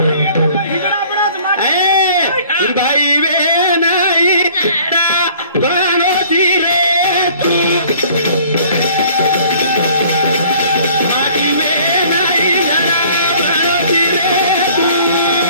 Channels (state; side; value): inverted; both; correlation -0.53